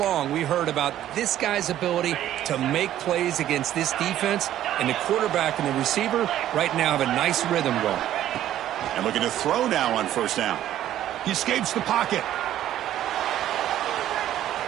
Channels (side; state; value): left; quieter; 12.3 dB